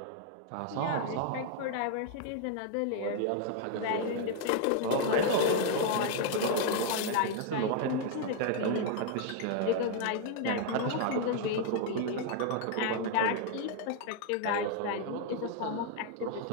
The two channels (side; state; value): both; different; correlation 0.00